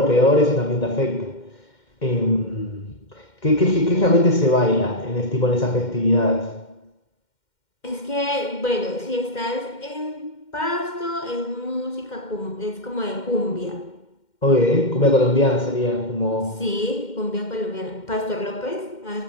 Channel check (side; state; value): right; late; 2.1 ms